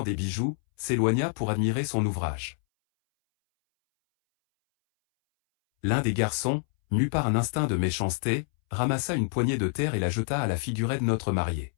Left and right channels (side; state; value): right; silent; 60 dB below the other